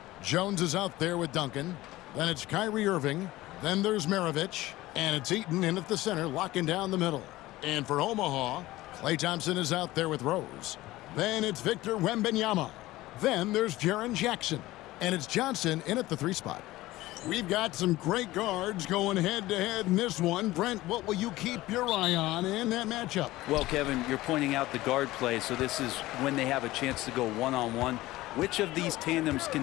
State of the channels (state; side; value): quieter; right; 17.6 dB